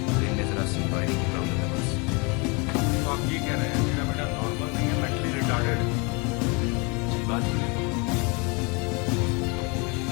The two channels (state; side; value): quieter; right; 30.3 dB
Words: ब्रेन में जरा सी वायरिंग की प्रॉब्लम है बस। तो आप ये कह रहे हैं मेरा बेटा नॉर्मल नहीं है, मेंटली रिटार्डेड है? सही बात है।